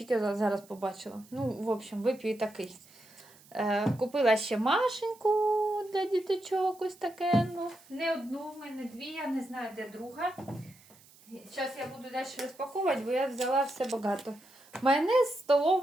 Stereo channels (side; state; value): right; noise; hiss, 26 dB below the sound